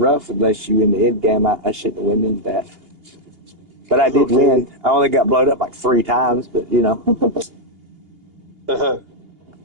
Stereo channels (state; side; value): late; left; 2.8 ms